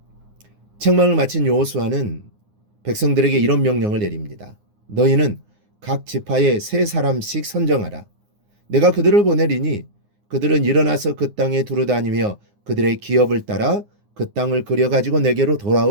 책망을 마친 여호수아는 백성들에게 이런 명령을 내립니다. 너희는 각 지파에 3사람씩 선정하라. 내가 그들을 보내리니 그들은 일어나서 그 땅에 두루다니며 그들의 기업을 따라 그 땅을 그려가지고 내게로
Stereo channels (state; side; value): late; left; 9.6 ms